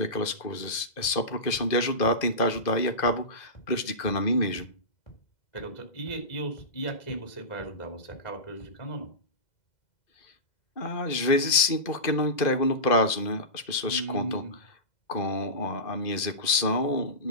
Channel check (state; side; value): late; right; 2.0 ms